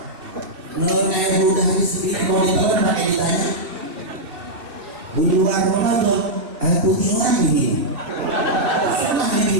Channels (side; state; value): left; late; 2.6 ms